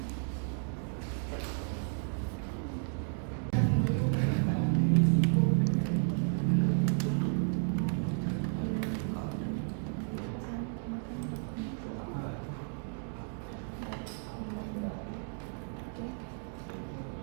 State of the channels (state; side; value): silent; left; 56 dB below the other